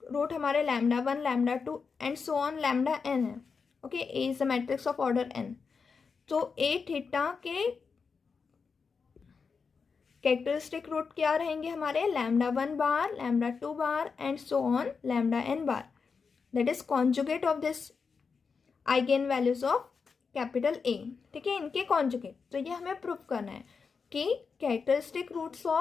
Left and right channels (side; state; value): right; quieter; 5.3 dB